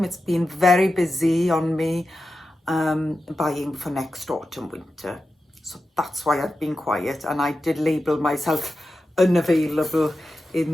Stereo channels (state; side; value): normal; both; correlation 0.91